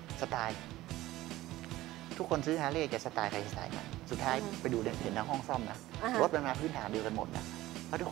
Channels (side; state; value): left; quieter; 16.7 dB